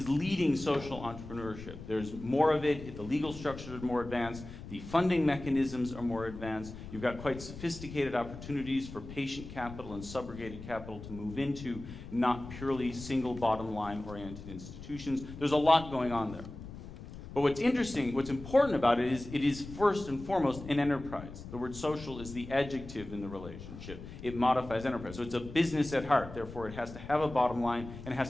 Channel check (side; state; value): left; noise; rumble, 13 dB below the sound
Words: leading social entrepreneurship. There's more of it, the legal structures are more advanced, the funding mechanisms are more advanced, you've got quite sophisticated opportunities for patient capital and subrogated capital to move into, not purely single bottom line oriented institutions. There's a lot going on there. But what's interesting, what's important about it is first and foremost an enterprise. The word social is the adjective in the relationship. It modifies enterprise. So it's a business at heart. Therefore, it has to have a bottom line and it